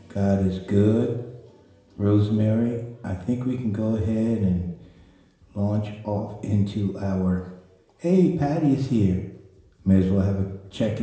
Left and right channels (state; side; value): identical; both; correlation 1.00